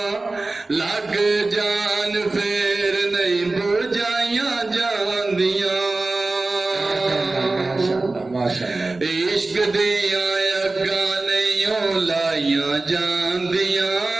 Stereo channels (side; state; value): left; quieter; 3.2 dB